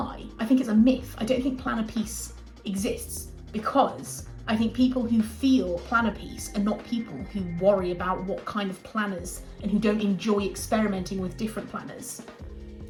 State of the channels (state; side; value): identical; both; correlation 1.00